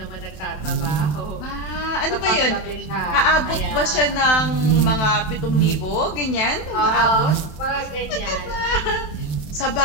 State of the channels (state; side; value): late; right; 27 ms